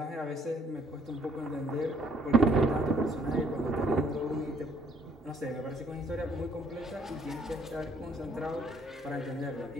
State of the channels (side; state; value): both; normal; correlation 0.64